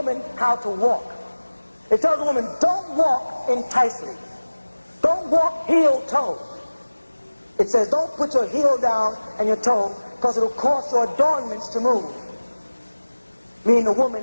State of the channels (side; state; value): both; inverted; correlation -1.00